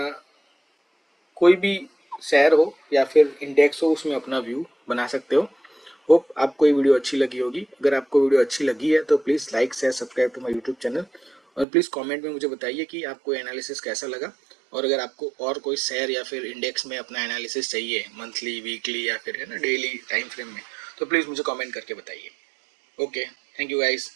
कोई भी शेयर हो या फिर इंडेक्स हो उसमें अपना व्यू बना सकते हो। होप आपको ये वीडियो अच्छी लगी होगी। अगर आपको वीडियो अच्छी लगी है तो please like share subscribe to my YouTube channel, और प्लीज़ कमेंट में मुझे बताइए कि आपको एनालिसिस कैसा लगा। और अगर आपको और कोई शेयर या फिर इंडेक्स में अपना एनालिसिस चाहिए मंथली वीकली या फिर है ना डेली टाइम फ्रेम में, तो प्लीज़ मुझे कमेंट करके बताइए। Okay, thank you guys.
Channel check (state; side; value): drops out; left; at 11.7 s